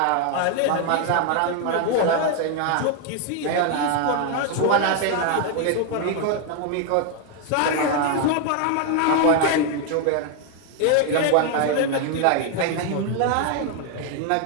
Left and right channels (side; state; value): both; different; correlation 0.01